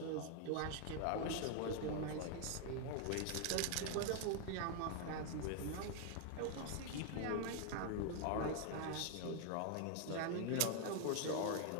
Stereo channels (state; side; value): different; both; correlation 0.01